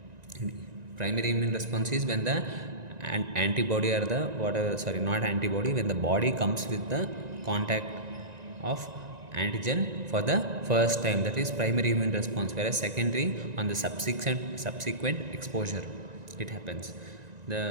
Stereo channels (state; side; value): late; left; 1.9 ms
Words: Primary immune response is when the antibody or the whatever, sorry, not antibody, when the body comes with the contact of antigen for the first time, that is primary immune response. Whereas secondary, on the subsequent exposure it happens.